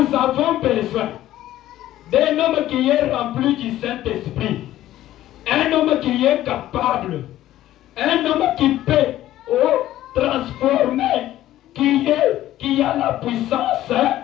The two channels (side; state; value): right; quieter; 13.9 dB